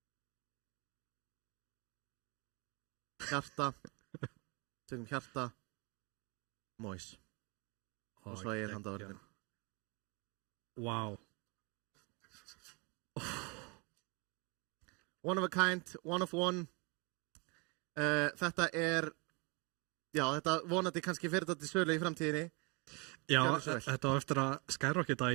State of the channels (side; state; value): left; quieter; 30.4 dB